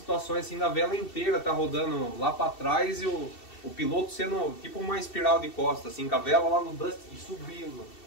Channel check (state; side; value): late; right; 2.7 ms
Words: assim, na vela inteira tá rodando lá para trás e o piloto sendo tipo uma espiral de costa, assim, com a vela lá no Dust e subindo.